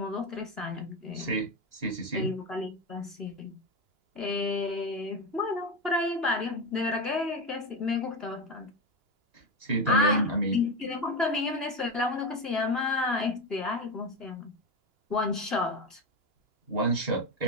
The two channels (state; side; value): late; left; 2.9 ms